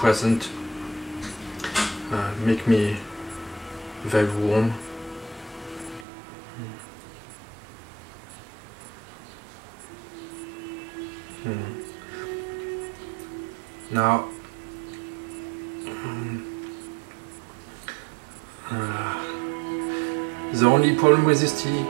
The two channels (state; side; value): drops out; left; at 6.1 s